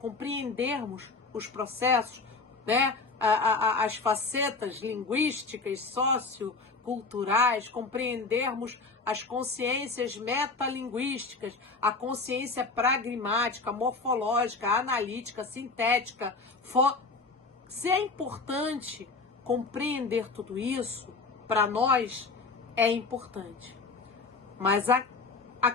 os processos, né, as facetas linguísticas, socioculturais, compreendermos as consciências metalinguísticas, a consciência pragmática, morfológica, analítica, sintética. Se é importante compreender tudo isso, para nós é importante. Mas a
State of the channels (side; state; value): right; quieter; 3.9 dB